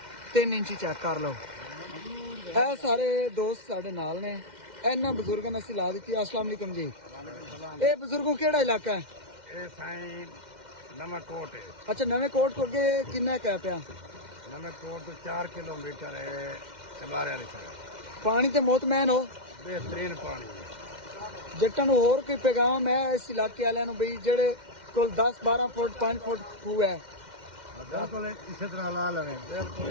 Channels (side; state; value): left; late; 2.1 ms